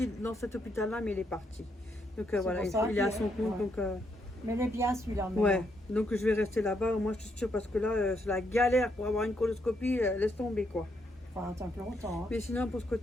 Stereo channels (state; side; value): normal; both; correlation 0.77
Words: dans cet hôpital-là, mais il est parti. Donc voilà, pour ça il est à qu'il son est- compte. ouais. Donc Mais il est bien celui-là maintenant. ouais, donc je vais rester là-bas. Moi, je suis sûre parce que là, c'est la galère pour avoir une coloscopie. Laisse tomber quoi. Faut attendre longtemps. Hein. Mais sinon, pour ce